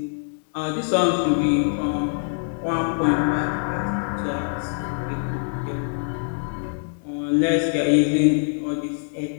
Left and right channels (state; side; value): silent; right; digital silence